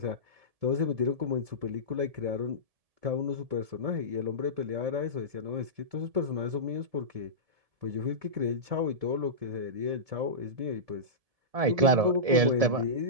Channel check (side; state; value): left; late; 1.7 ms